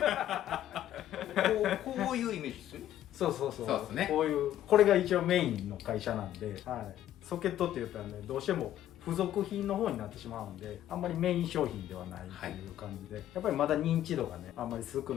こういうイメージですよね。そうそうそう。そうですね。こういう、これが一応メインの会社なんで、はい、ソケットって言ったらね、どうしても付属品の方になってしまうんで、あんまりメイン商品ではないっていう感じで、やっぱりまだ認知度がね、あんまり少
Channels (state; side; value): quieter; right; 12.2 dB